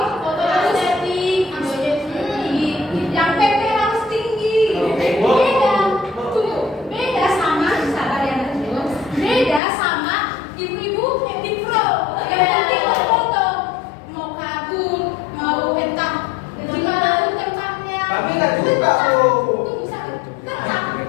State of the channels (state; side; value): drops out; right; at 9.6 s